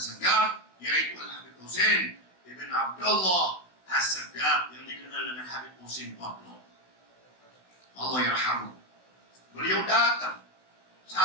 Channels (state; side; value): late; right; 16 ms